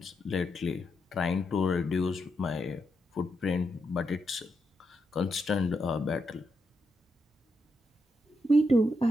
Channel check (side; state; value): both; normal; correlation 0.83